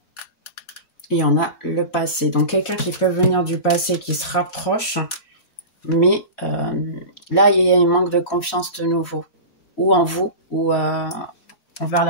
Il y en a le passé. Donc, quelqu'un qui peut venir du passé, qui se rapproche, mais là, il y a un manque de confiance de nouveau. Ou en vous, ou envers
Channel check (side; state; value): right; late; 4.0 ms